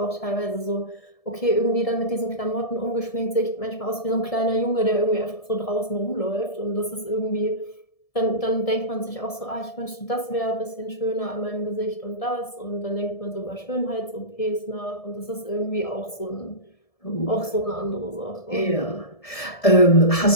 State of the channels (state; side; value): late; right; 1.7 ms